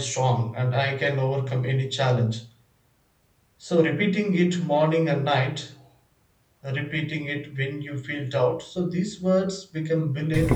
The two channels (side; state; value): both; identical; correlation 1.00